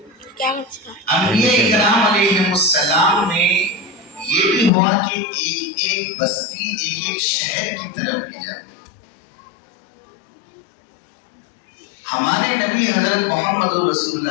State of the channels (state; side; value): drops out; right; at 4.7 s